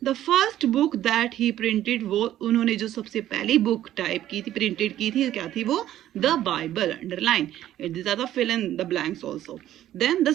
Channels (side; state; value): left; quieter; 12.7 dB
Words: The first book that he printed, वो उन्होंने जो सबसे पहली बुक टाइप की थी, प्रिंटेड की थी, क्या थी वो, the Bible, underline it, this are the fill in the blanks also. Then the